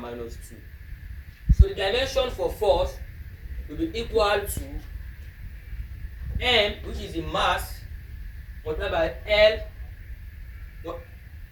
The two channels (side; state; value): both; identical; correlation 1.00